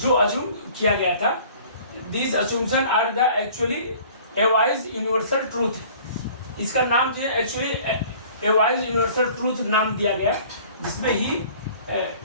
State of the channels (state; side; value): inverted; both; correlation -0.50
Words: अज्यूम किया गया था, this assumption are the actually always universal truth. इसका नाम जो है एक्चुअली एवाइज यूनिवर्सल ट्रूथ नाम दिया गया, जिसमें ही